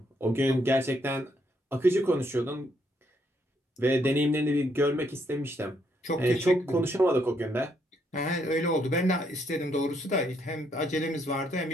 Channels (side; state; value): both; normal; correlation 0.73